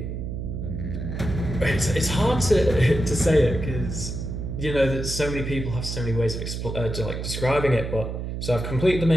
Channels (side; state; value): right; noise; hum, 5 dB below the sound